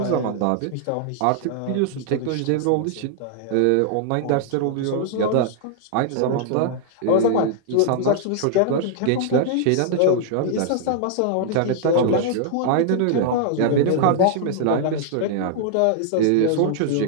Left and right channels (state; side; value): different; both; correlation -0.01